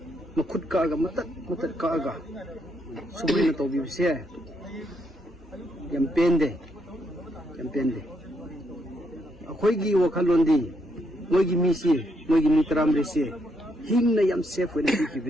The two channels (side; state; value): both; normal; correlation 0.76